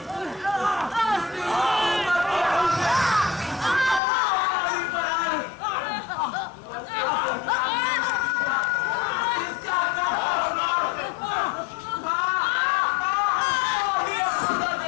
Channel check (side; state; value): right; drops out; at 4.0 s